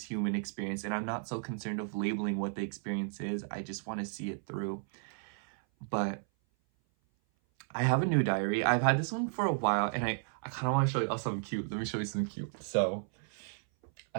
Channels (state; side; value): silent; left; 55 dB below the other